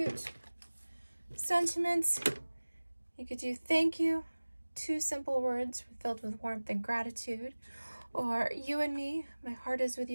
sentiments. You could do thank you, two simple words filled with warmth and gratitude, or you and me, my heart is with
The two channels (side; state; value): both; inverted; correlation -1.00